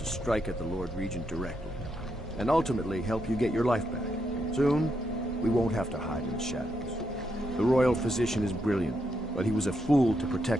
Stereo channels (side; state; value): both; normal; correlation 0.81